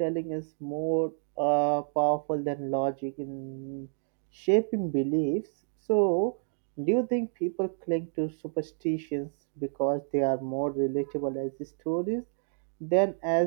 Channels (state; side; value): silent; left; digital silence